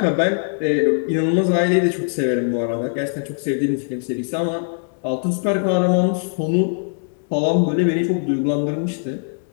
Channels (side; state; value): right; silent; digital silence